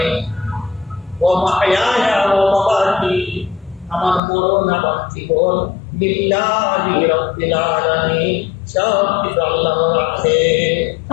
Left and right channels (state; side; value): drops out; right; at 4.2 s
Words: ওয়া মাহইয়ায়া ওয়া মামাতি, আমার মরণ আমার জীবন, লিল্লাহি রাব্বিল আলামিন, সব কিছু আল্লাহর হাতে।